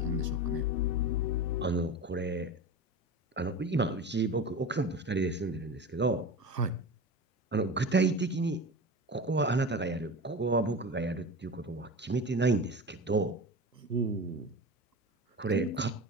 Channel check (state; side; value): normal; both; correlation 0.29